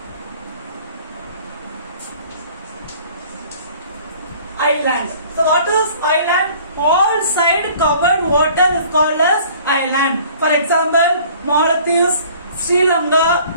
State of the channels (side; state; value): both; inverted; correlation -0.51